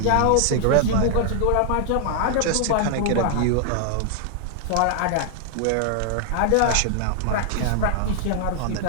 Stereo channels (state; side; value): different; both; correlation 0.00